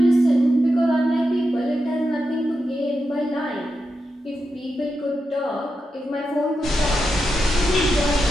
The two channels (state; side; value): normal; both; correlation 0.88